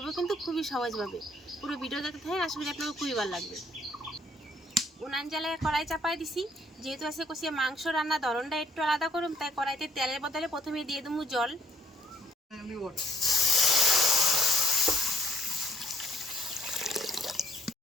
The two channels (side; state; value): both; normal; correlation 0.65